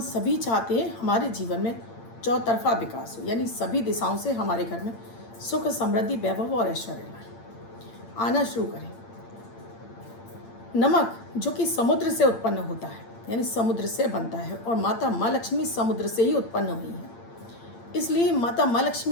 सभी चाहते हैं हमारे जीवन में चौतरफा विकास हो, यानी सभी दिशाओं से हमारे घर में सुख, समृद्धि, वैभव और ऐश्वर्य आना शुरू करें। नमक जो कि समुद्र से उत्पन्न होता है, यानी समुद्र से बनता है, और माता माँ लक्ष्मी समुद्र से ही उत्पन्न हुई है, इसलिए माता माँ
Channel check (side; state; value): right; late; 8.8 ms